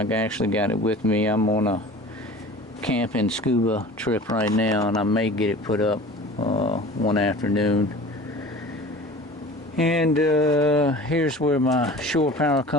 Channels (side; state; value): both; normal; correlation 0.41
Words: actually got it with me. I'm on a camping scuba trip right now, and I may get it put up one afternoon. And here's where my shore power